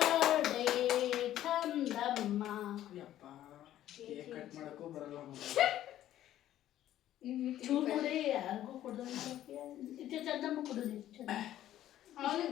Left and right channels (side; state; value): right; quieter; 12.7 dB